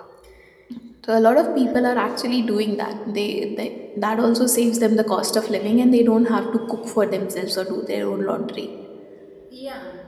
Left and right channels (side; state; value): both; identical; correlation 1.00